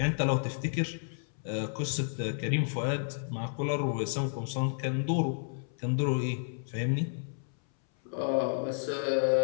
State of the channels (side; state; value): right; silent; 57 dB below the other